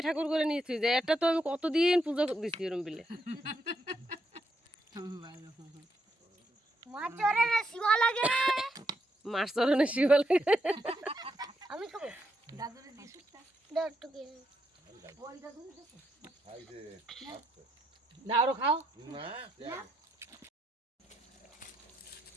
ঠাকুর করে নিয়ে থুয়ে দেয়। এটা তো আমি কতদিন পুজো দিচ্ছি এরম বিলে। মাছ চরণে শিবা লাগে। আমি খাবো। দাদুরে দিছুটা দাও একটু কি ওই দাদুরে দিছু খাই দে না আরো খাও না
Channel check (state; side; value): normal; both; correlation 0.79